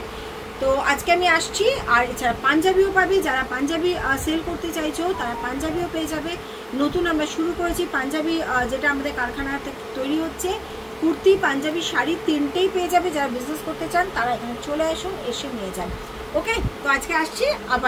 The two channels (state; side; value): identical; both; correlation 1.00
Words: তো আজকে আমি আসছি। আর এছাড়া পাঞ্জাবিও পাবে, যারা পাঞ্জাবি সেল করতে চাইছো তারা পাঞ্জাবিও পেয়ে যাবে। নতুন আমরা শুরু করেছি পাঞ্জাবি, যেটা আমাদের কারখানাতে তৈরি হচ্ছে। কুর্তি, পাঞ্জাবি, শাড়ি তিনটেই পেয়ে যাবে। যারা বিজনেস করতে চান তারা এখানে চলে আসুন, এসে নিয়ে যান। ওকে, তো আজকে আসছি,